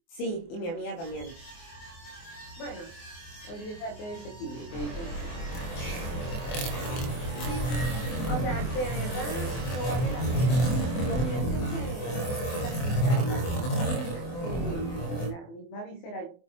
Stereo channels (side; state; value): right; late; 24 ms